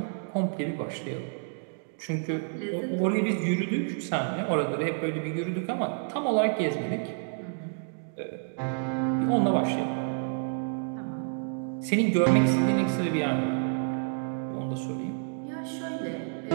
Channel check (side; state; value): left; silent; digital silence